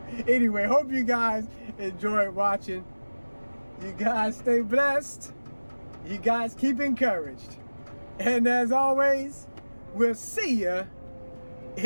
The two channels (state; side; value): inverted; both; correlation -1.00